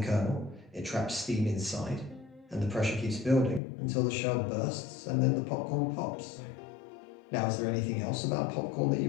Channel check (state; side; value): drops out; right; at 3.6 s